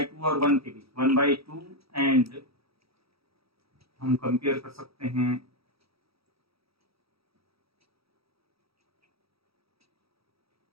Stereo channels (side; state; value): left; late; 0.76 ms